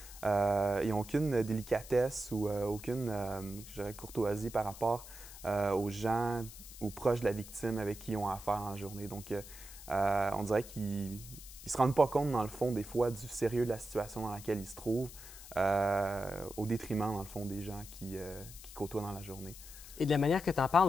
Ils n'ont aucune délicatesse ou aucune, je dirais, courtoisie par rapport aux gens ou proches de la victime avec qui ils ont affaire en journée. Donc, on dirait qu'ils ne se rendent pas compte, dans le fond, des fois, du sérieux de la situation dans laquelle ils se trouvent, au détriment, dans le fond, des gens qui côtoient dans la journée. Et de la manière que tu en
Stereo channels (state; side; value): noise; left; hiss, 15 dB below the sound